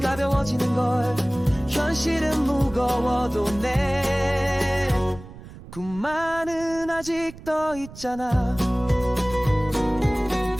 걸. 현실은 무거워도 내 꿈만은 아직 떠 있잖아.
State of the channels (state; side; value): noise; right; rumble, 16 dB below the sound